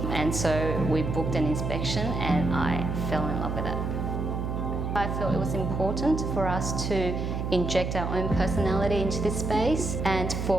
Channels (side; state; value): right; noise; hum, 2 dB below the sound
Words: and so we booked an inspection and I fell in love with it. I felt it was important for us to inject our own personality into this space, and